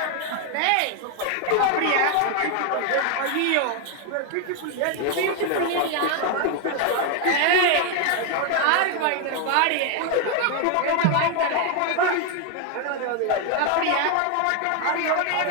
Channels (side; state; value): both; different; correlation 0.01